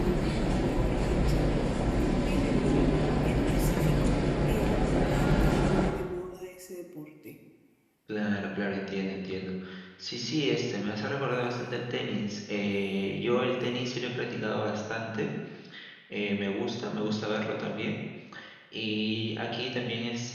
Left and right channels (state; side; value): identical; both; correlation 1.00